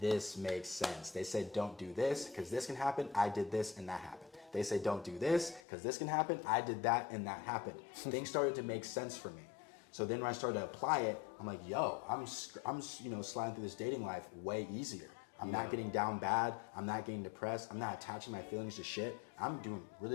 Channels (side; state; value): right; drops out; at 5.6 s